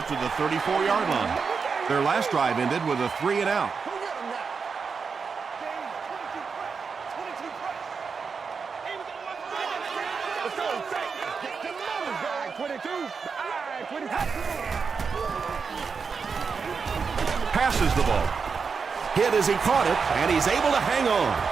to the 34-yard line. Their last drive ended with a 3-and-out. Passes the ball. Hit as he caught it, and he's able to hang on.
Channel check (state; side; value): quieter; left; 5.5 dB